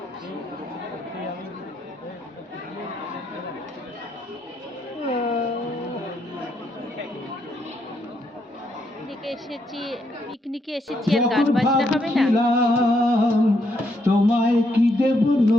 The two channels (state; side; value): normal; both; correlation 0.76